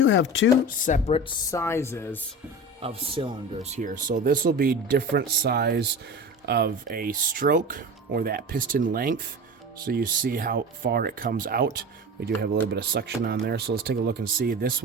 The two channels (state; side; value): normal; both; correlation 0.31